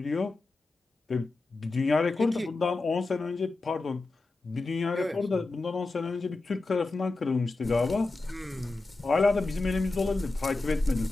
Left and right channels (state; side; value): quieter; right; 3.3 dB